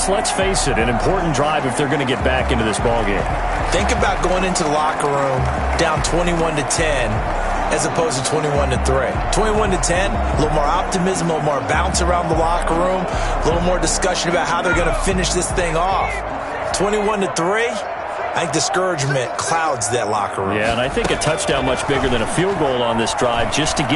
let's face it, an important drive if they're going to get back into this ballgame. Think about going into the locker room down 21-10 as opposed to 21-3. 21-10, a little more optimism, a little more bounce around the locker room, a little more discussion about how they're going to finish this thing off. 21-3, I think discouragement clouds that locker room. Yeah, and I think a touchdown much bigger than a field goal on this drive just to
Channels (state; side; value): identical; both; correlation 1.00